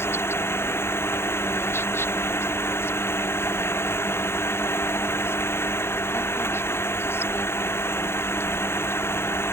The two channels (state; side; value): late; right; 0.12 ms